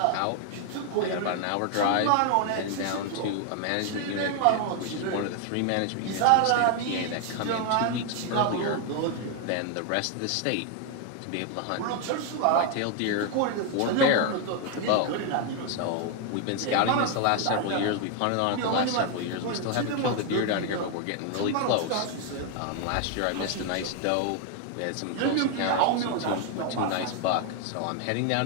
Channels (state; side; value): different; both; correlation 0.00